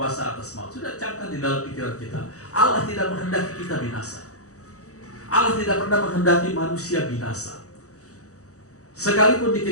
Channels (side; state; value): right; late; 0.65 ms